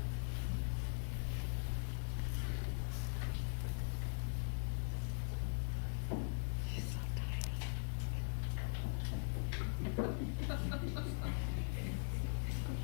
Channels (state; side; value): silent; right; digital silence